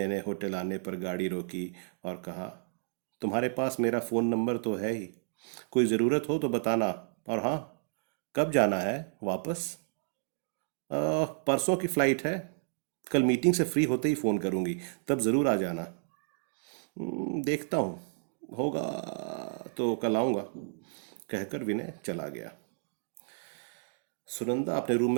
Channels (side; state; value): left; silent; digital silence